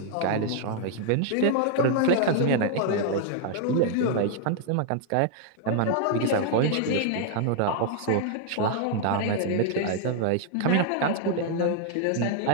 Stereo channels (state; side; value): different; both; correlation 0.00